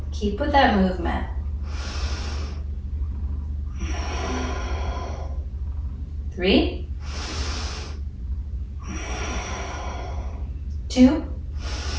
Keep with that movement. 3, 2,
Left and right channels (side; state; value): both; identical; correlation 1.00